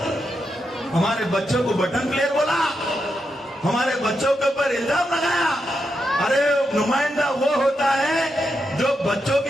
हमारे बच्चों को बटन प्लेयर बोला, हमारे बच्चों के ऊपर इल्जाम लगाया। अरे नुमाइंदा वो होता है जो बच्चों की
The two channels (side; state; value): both; normal; correlation 0.85